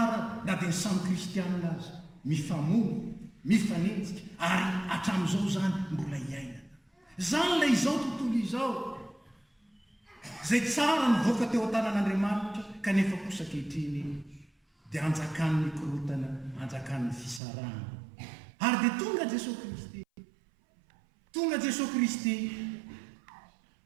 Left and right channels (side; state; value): left; drops out; at 17.4 s